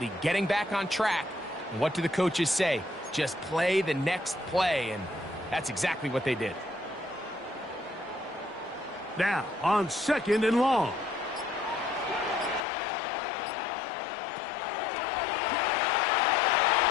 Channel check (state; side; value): drops out; right; at 12.7 s